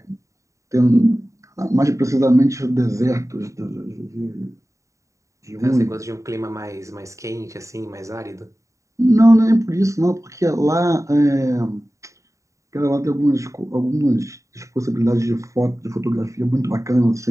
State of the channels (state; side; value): late; left; 0.15 ms